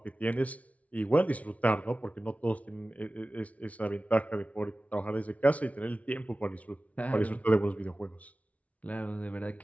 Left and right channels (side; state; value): right; late; 0.067 ms